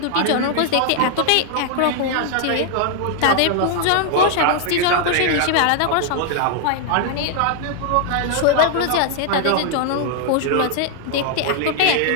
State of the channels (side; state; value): both; different; correlation 0.00